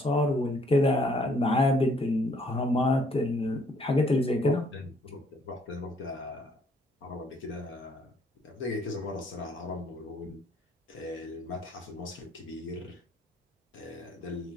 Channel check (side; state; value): both; normal; correlation 0.65